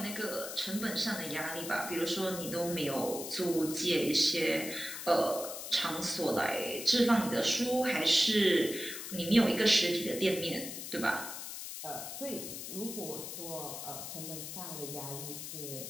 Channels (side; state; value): left; noise; hiss, 8 dB below the sound